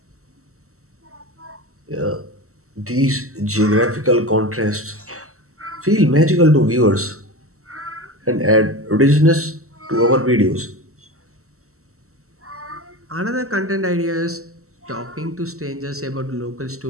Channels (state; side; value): late; left; 0.63 ms